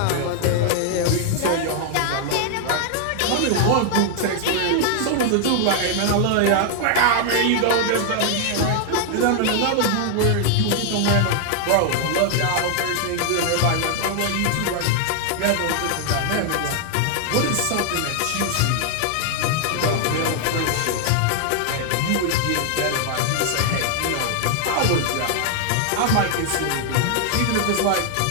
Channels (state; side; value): different; both; correlation 0.00